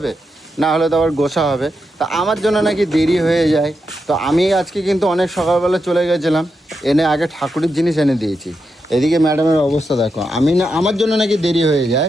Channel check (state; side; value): normal; both; correlation 0.86